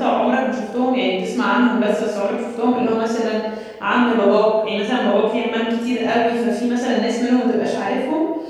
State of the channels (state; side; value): identical; both; correlation 1.00